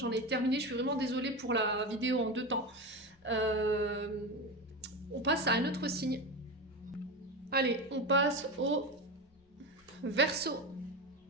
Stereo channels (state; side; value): normal; both; correlation 0.21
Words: ai terminé. Je suis vraiment désolée pour la vidéo en 2 temps. On passe à un autre signe. Allez, on passe au Verseau.